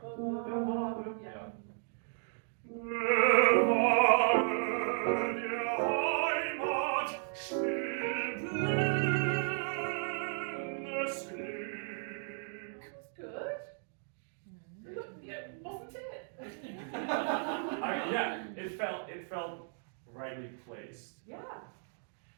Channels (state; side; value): silent; left; 55 dB below the other